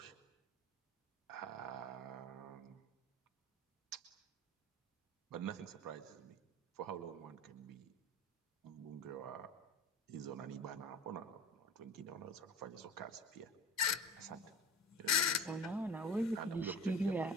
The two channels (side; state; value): both; normal; correlation 0.34